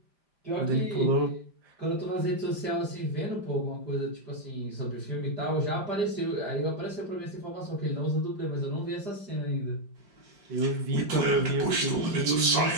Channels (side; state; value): left; late; 5.1 ms